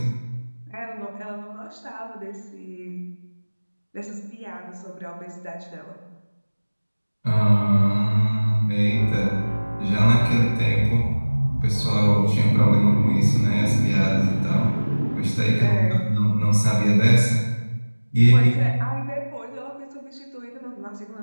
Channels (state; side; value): inverted; both; correlation -1.00